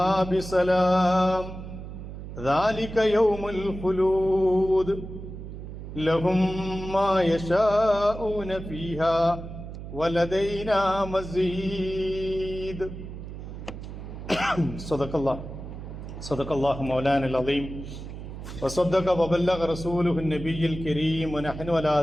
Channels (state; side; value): noise; right; hum, 10 dB below the sound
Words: بسلام ذلك يوم الخلود لهم ما يشاءون فيها ولدينا مزيد. صدق الله مولانا العظيم وصدق وبلغ رسوله النبي الكريم ونحن على